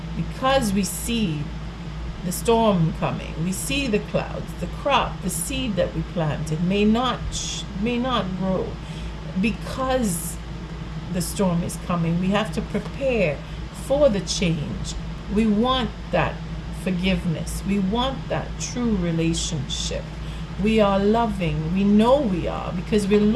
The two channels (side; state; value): both; identical; correlation 1.00